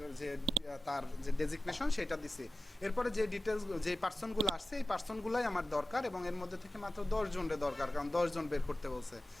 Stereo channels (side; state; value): both; normal; correlation 0.96